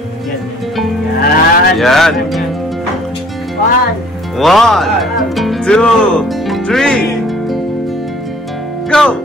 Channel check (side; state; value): both; normal; correlation 0.55